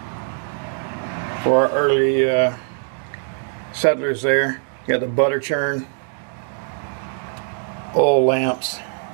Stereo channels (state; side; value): silent; left; 61 dB below the other